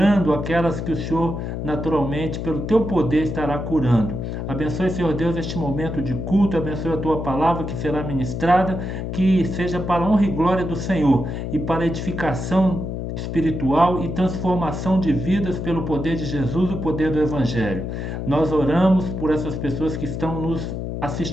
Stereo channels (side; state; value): left; noise; hum, 4 dB below the sound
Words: aquelas que o Senhor naturalmente, pelo Teu poder, estará curando. Abençoe, Senhor Deus, este momento de culto, abençoe a Tua palavra que será ministrada, que seja para a honra e glória do Senhor e para a edificação espiritual e transformação de vidas pelo poder de Jesus, o poder do Evangelho. Nós oramos por essas pessoas que estão nos